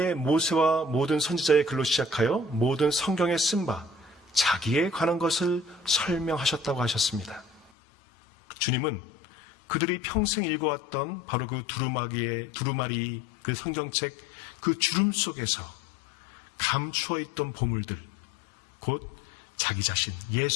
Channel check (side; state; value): right; drops out; at 7.7 s